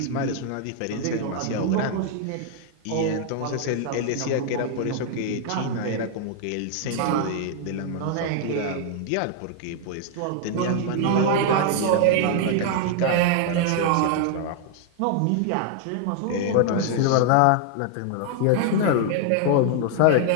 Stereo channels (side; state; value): both; different; correlation 0.00